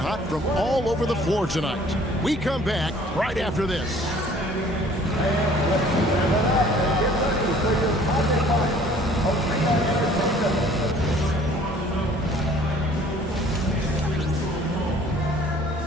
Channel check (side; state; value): both; normal; correlation 0.54